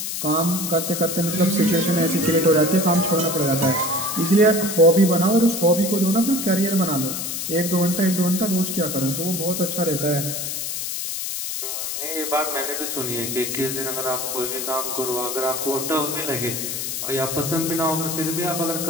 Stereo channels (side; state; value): left; noise; hiss, 4 dB below the sound